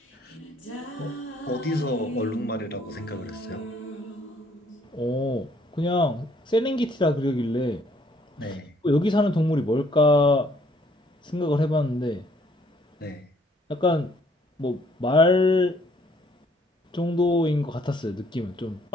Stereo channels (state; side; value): normal; both; correlation 0.63